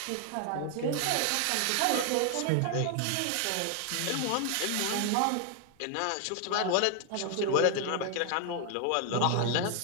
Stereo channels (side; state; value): both; different; correlation 0.00